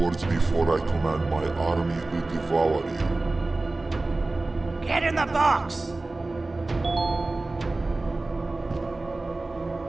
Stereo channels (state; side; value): quieter; left; 3.1 dB